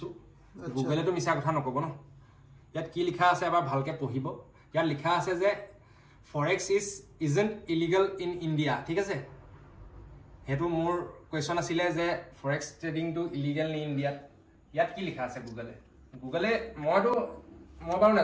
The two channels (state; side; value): identical; both; correlation 1.00